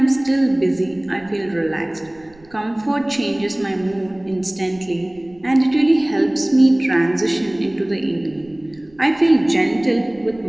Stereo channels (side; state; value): right; noise; rumble, 28 dB below the sound